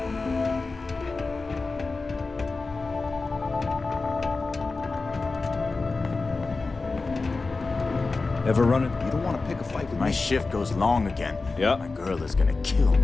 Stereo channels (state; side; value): quieter; right; 3.8 dB